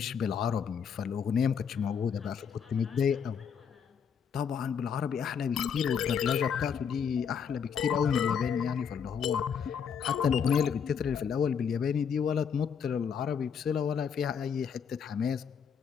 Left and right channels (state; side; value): quieter; right; 7.1 dB